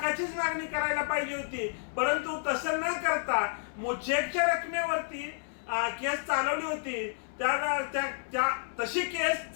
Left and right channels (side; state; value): right; silent; 57 dB below the other